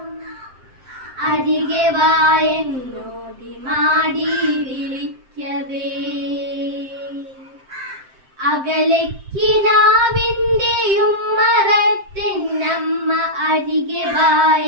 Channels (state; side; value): late; left; 7.7 ms